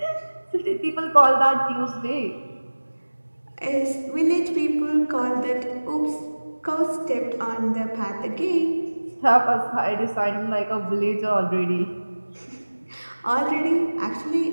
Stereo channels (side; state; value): both; inverted; correlation -1.00